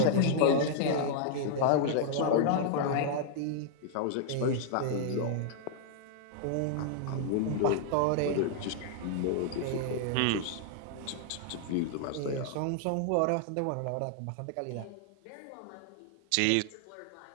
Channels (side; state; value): both; different; correlation -0.01